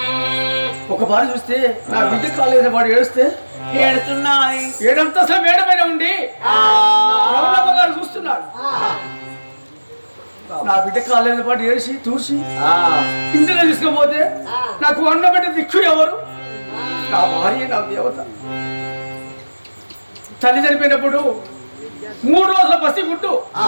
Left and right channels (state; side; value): inverted; both; correlation -1.00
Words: ఒక బారి చూస్తే నా బిడ్డ కాలేజీ వాడు ఏడుస్తే ఏడుతున్నాయి. 7 అంతస్తుల మేడ పైన ఉండి రమణమ్మ గారు చూస్తున్నాడు. నా బిడ్డ కాలేజీ పాటు ఏడిసి చూసి ఇంటిలో తీసుకుపోతే నాకు అన్నబిడ్డ దిక్కు ఎవరు? నా భార్య, నా దేవత. తల్లి చనిపోయినప్పుడు 3 రోజుల పసి గుడ్డు.